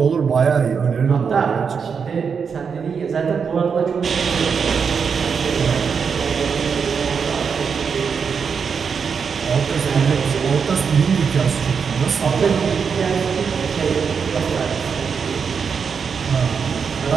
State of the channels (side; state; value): left; quieter; 6.2 dB